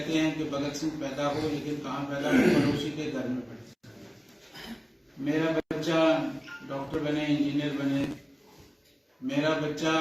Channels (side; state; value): both; identical; correlation 1.00